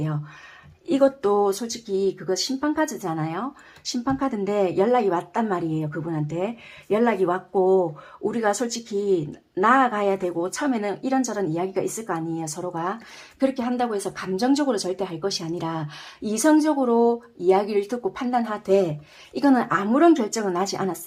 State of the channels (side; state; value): both; identical; correlation 1.00